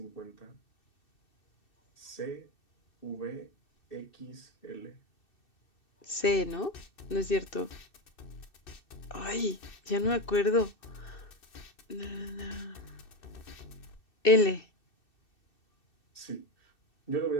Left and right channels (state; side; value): late; right; 2.6 ms